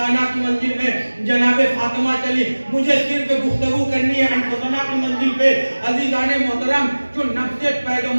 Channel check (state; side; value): inverted; both; correlation -1.00